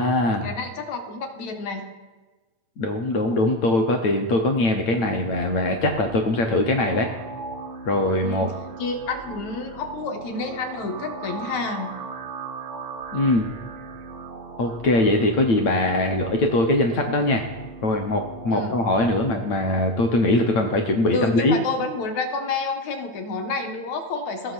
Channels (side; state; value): right; late; 8.9 ms